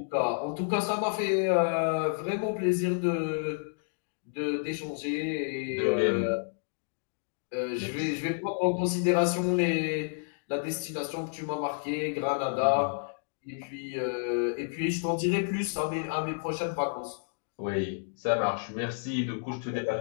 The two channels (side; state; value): right; silent; digital silence